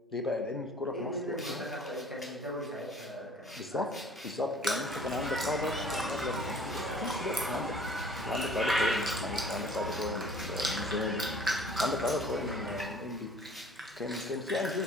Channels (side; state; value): both; normal; correlation 0.52